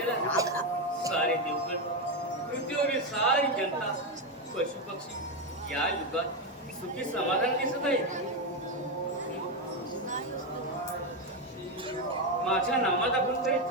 सारे देवगण, पृथ्वीवरील सारी जनता, पशु पक्षी या युगात सुखी समाधान दिसत आहे. माझ्या नामात आपण काही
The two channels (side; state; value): both; normal; correlation 0.08